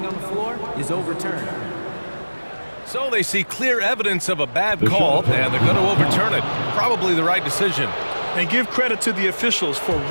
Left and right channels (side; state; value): both; inverted; correlation -1.00